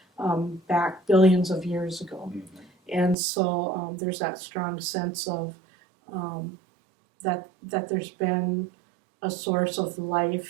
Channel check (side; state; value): left; drops out; at 3.2 s